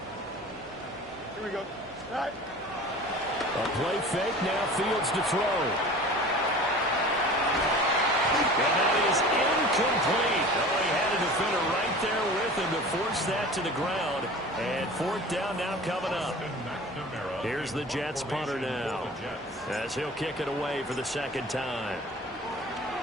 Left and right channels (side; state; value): right; noise; hum, 27 dB below the sound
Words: Here we go. Right. A play fake, now Fields to throw. And that is incomplete. Oh, he had a defender right there with him to force that to the ground. And 4th down now coming up. Here's the Jets punter now, as he'll kick it away for the 2nd time.